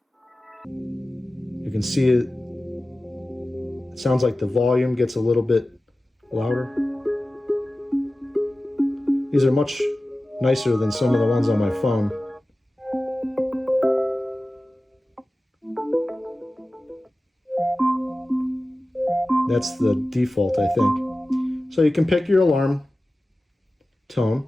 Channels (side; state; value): both; normal; correlation 0.95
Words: You can see it. It sounds like the volume gets a little bit louder. These are much nicer than some of the ones on my phone. That's the default, I think. So you can pick your alarm